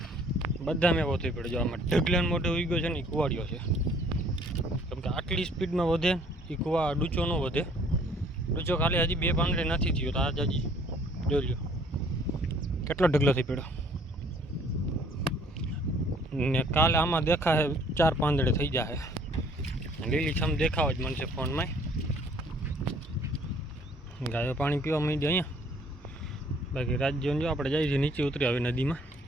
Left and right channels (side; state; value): both; normal; correlation 0.58